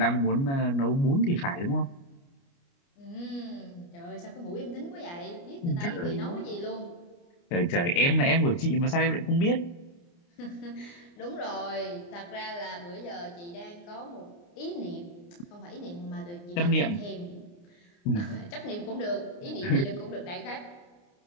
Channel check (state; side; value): late; right; 29 ms